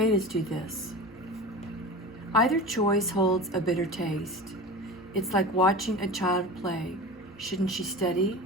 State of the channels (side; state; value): both; normal; correlation 0.31